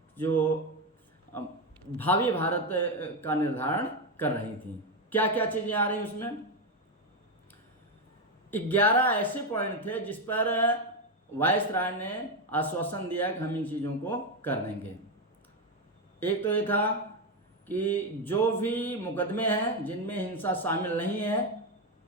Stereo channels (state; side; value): normal; both; correlation 0.09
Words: जो भावी भारत का निर्धारण कर रही थी। क्या क्या चीज़ें आ रही उसमें? 11 ऐसे पॉइंट थे जिस पर वायसराय ने आश्वासन दिया कि हम इन चीज़ों को कर देंगे। एक तो ये था कि जो भी मुकदमे हैं जिनमें हिंसा शामिल नहीं है